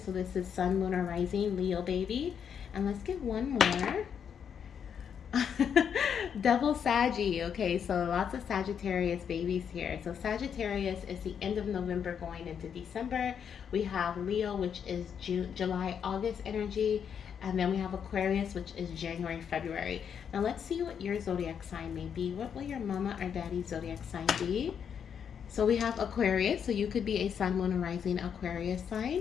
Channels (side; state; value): right; quieter; 7.7 dB